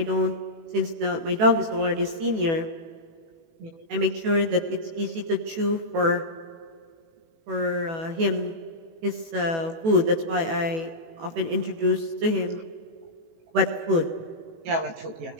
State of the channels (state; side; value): late; left; 18 ms